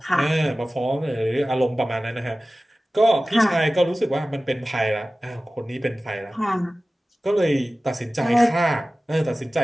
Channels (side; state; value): both; normal; correlation 0.96